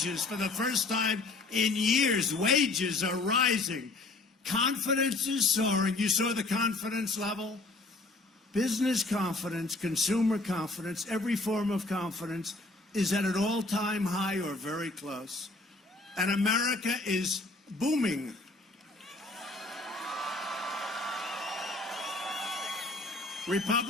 for the first time in years. Wages are rising. Confidence is soaring. You saw the confidence level? Business confidence, consumer confidence, every form of confidence is at an all-time high or very close. And America is booming.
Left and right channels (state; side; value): quieter; right; 3.2 dB